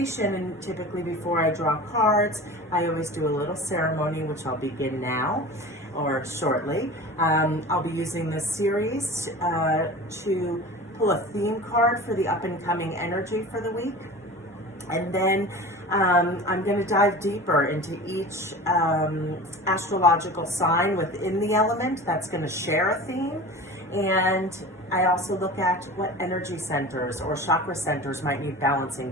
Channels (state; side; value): normal; both; correlation 0.36